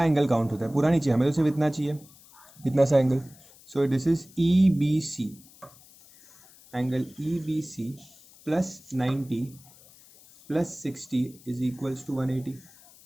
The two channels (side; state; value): left; noise; hiss, 24 dB below the sound